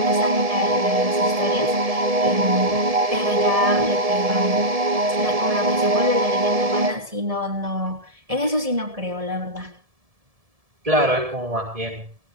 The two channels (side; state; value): left; late; 1.7 ms